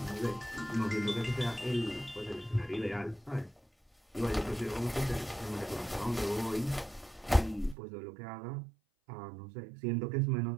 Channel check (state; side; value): drops out; left; at 7.8 s